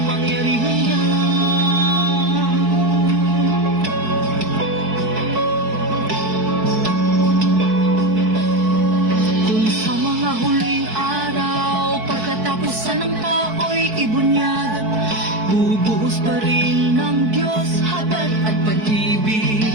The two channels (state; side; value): late; left; 4.6 ms